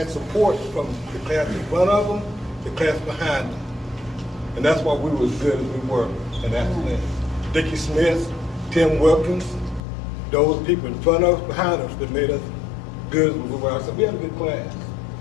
support from the class in front of them, the class behind them. And that's why we were as good as we were in that class. Dickie Smith, Tim Wilkins, those people in front of us, behind us that made us good as we were. So we had a good class.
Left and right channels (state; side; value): drops out; right; at 9.8 s